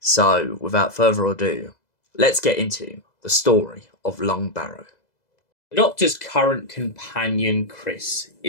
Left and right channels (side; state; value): right; late; 2.0 ms